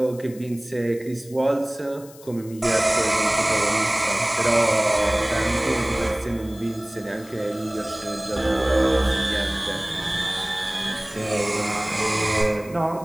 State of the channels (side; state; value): left; noise; hiss, 21 dB below the sound